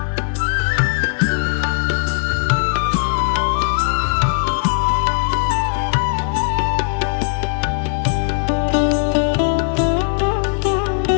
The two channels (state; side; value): silent; right; 62 dB below the other